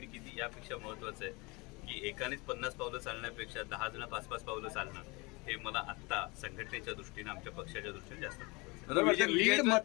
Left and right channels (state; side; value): quieter; right; 26.2 dB